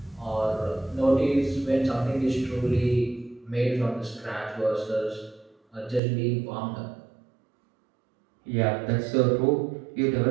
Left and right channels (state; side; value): drops out; left; at 6.0 s